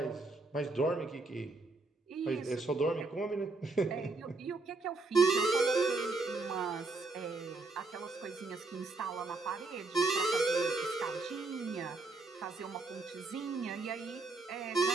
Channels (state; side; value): quieter; left; 3.5 dB